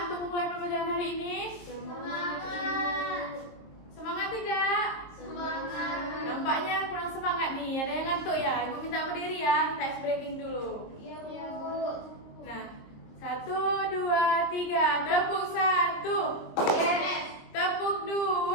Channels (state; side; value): late; right; 23 ms